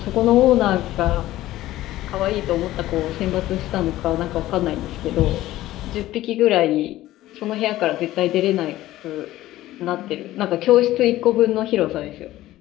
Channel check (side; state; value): right; quieter; 15.5 dB